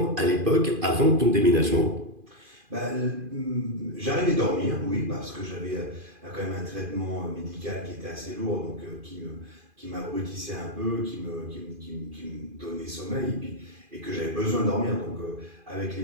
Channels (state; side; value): late; left; 2.5 ms